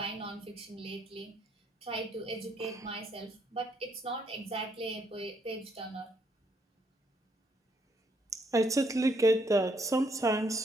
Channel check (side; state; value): both; normal; correlation 0.72